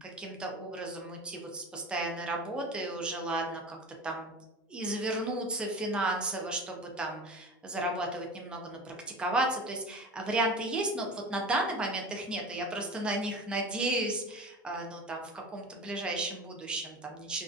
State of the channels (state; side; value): normal; both; correlation 0.34